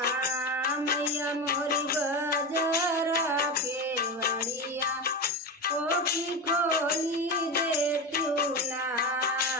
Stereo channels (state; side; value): normal; both; correlation 0.19